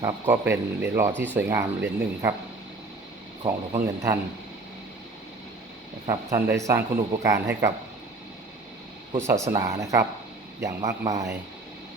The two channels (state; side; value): quieter; left; 3.2 dB